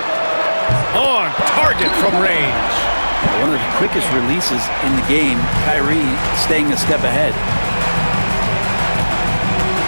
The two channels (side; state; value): both; inverted; correlation -1.00